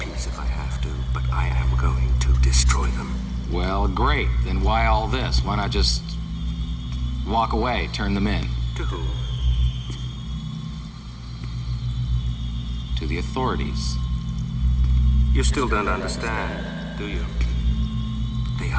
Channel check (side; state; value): both; identical; correlation 1.00